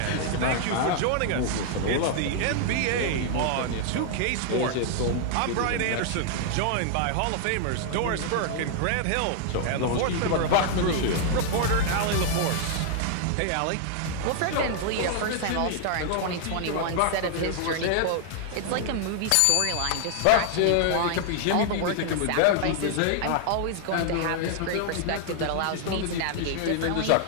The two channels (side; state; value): both; different; correlation 0.00